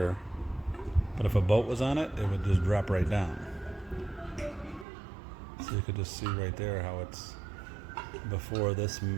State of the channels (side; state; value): left; drops out; at 4.9 s